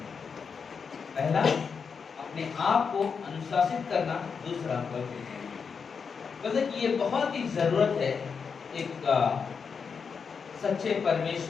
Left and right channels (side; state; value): right; quieter; 5.9 dB